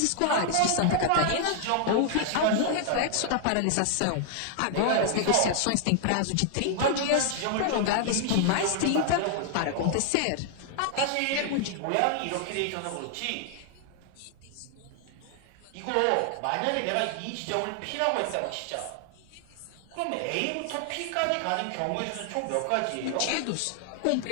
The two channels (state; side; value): different; both; correlation 0.00